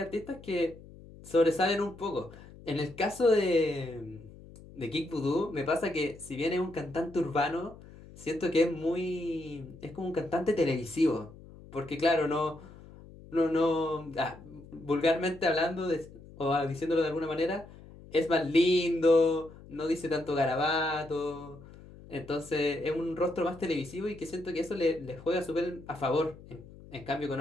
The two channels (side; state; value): left; noise; hum, 19 dB below the sound